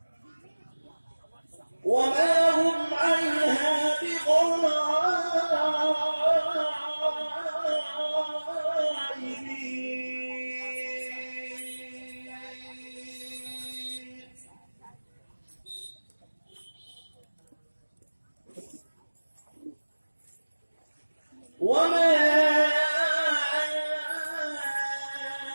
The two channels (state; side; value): inverted; both; correlation -1.00